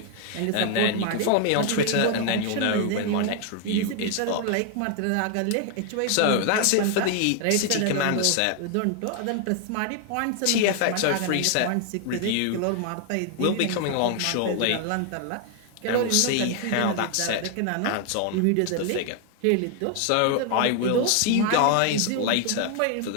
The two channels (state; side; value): different; both; correlation 0.00